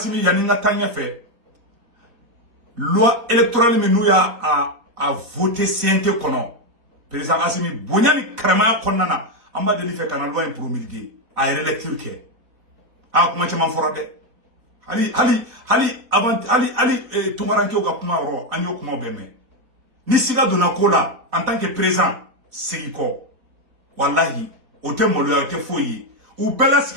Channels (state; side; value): late; left; 4.2 ms